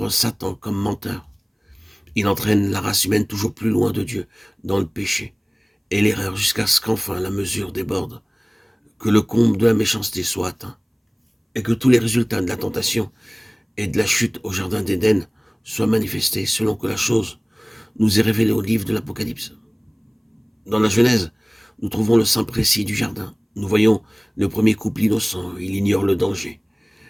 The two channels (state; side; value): identical; both; correlation 1.00